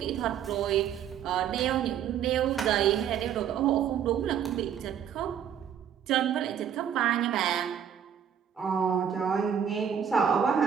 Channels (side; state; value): left; quieter; 8.8 dB